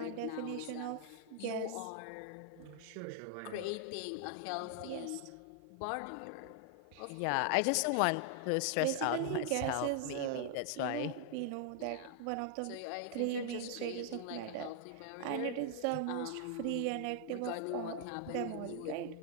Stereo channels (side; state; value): both; different; correlation 0.00